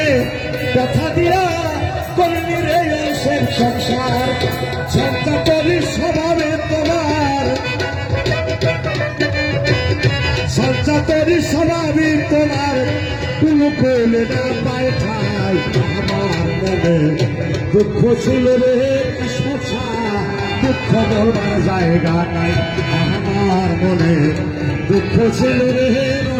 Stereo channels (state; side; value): identical; both; correlation 1.00